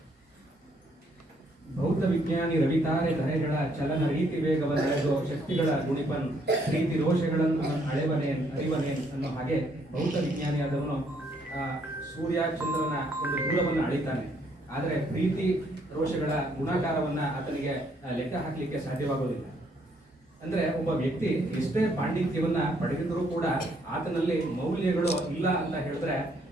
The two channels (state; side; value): normal; both; correlation 0.69